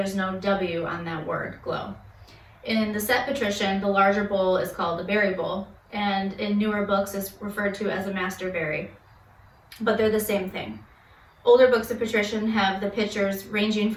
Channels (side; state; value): both; identical; correlation 1.00